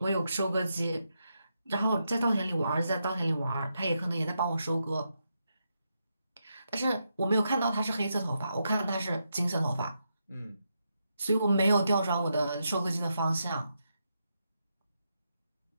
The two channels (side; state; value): both; inverted; correlation -0.83